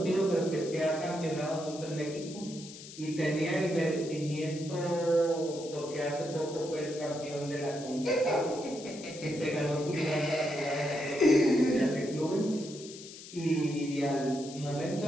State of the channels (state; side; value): noise; left; hiss, 15 dB below the sound